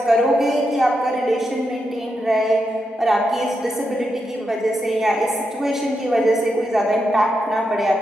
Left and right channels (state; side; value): normal; both; correlation 0.85